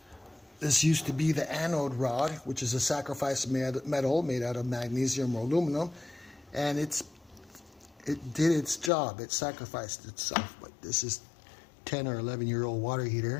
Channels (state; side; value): drops out; right; at 8.9 s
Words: This used to be the anode rod, which is a sacrifice metal made out of magnesium or aluminum, and it did its job. It sacrificed itself. But this is 10 or 11-year-old water